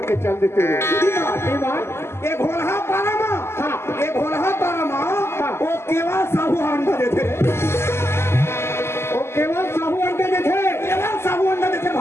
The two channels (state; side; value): late; right; 0.12 ms